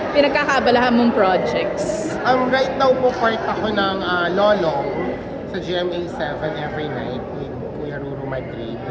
pinagkakaabalahan mong projects? Right now po part ako ng Lolong sa GMA 7 every night with Kuya Ruru Madrid.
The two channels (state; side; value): identical; both; correlation 1.00